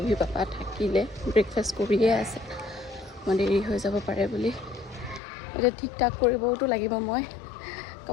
পাপা থাকিলে ব্ৰেকফাষ্ট কৰিয়ে আছে মই দেৰি হৈ যাব পাৰে বুলি এতিয়া ঠিক ঠাক কৰিবওতো লাগিব মই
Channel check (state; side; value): drops out; right; at 5.2 s